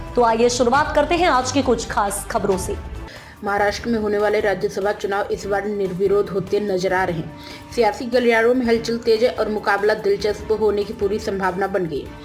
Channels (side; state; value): both; identical; correlation 1.00